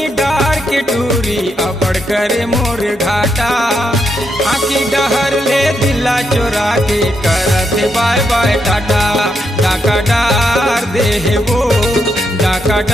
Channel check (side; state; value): both; normal; correlation 0.80